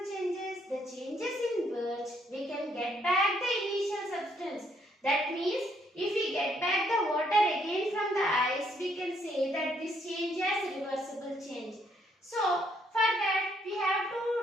changes? The changes in which we can get back the initial substance. That means if we get back the water again from the ice, we can say that this change has reversible change. So for that we have to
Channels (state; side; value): normal; both; correlation 0.70